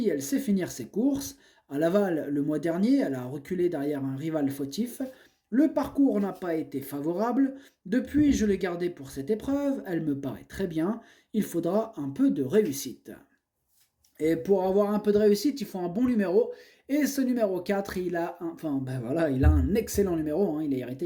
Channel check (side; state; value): both; identical; correlation 1.00